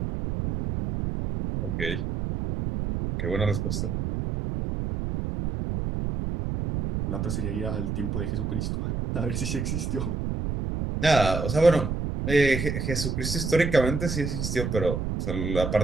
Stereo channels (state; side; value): noise; right; rumble, 2 dB below the sound